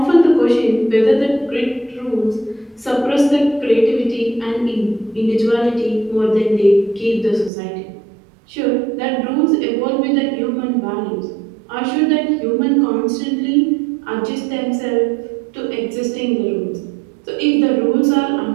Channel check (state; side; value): drops out; left; at 7.5 s